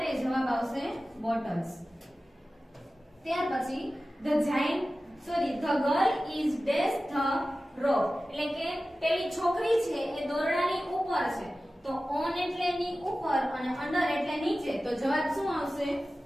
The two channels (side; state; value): both; normal; correlation 0.95